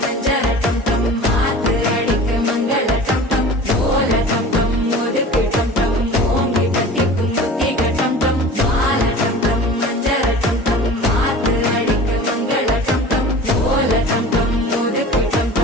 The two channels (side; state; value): both; normal; correlation 0.39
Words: மஞ்சள் டம் டம் மாத்து அடிக்க மங்கள டம் டம் ஓல டம் டம் ஒதுக்கு டம் டம் ஓங்கி தட்டிக்கும் முத்திக டம் டம் மாலை டம் டம் மஞ்சள் டம் டம் மாத்து அடிக்க மங்கள டம் டம் ஓல டம் டம் ஒதுக்கு டம்